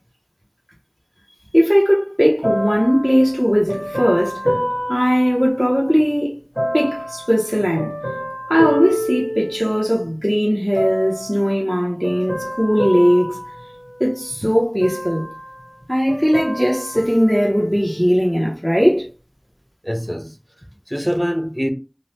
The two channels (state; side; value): identical; both; correlation 1.00